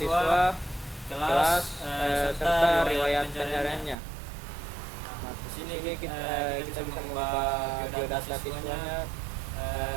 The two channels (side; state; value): left; drops out; at 4.0 s